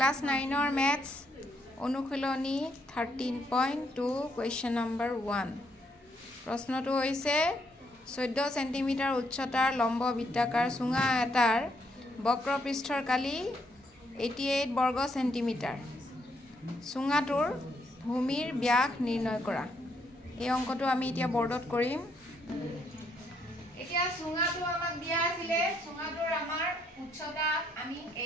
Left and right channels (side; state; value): both; normal; correlation 0.74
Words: 9 or maths অনুশীলনী 13.2 question number 1 প্ৰশ্নটো হৈছে 14 সেন্টিমিটাৰ উচ্চতাৰ লম্ব বৃত্তাকাৰ চুঙা এটাৰ বক্ৰপৃষ্ঠৰ কালি 88 বৰ্গ সেন্টিমিটাৰ চুঙাটোৰ ভূমিৰ ব্যাস নিৰ্ণয় কৰা এই অংকটো আমি এতিয়া বৰ্ডত কৰিম এতিয়া চুঙাটো আমাক দিয়া আছিল চুঙাটোৰ আমাৰ উচ্চতা আমি